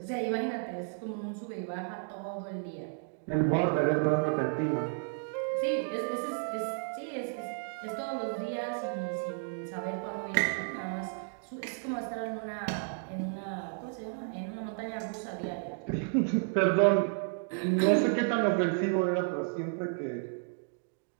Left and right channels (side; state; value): left; silent; 56 dB below the other